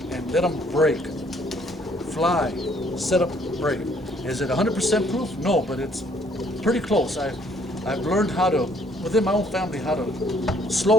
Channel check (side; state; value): both; normal; correlation 0.64